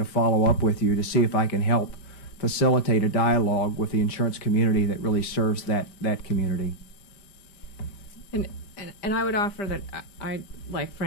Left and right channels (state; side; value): late; right; 5.0 ms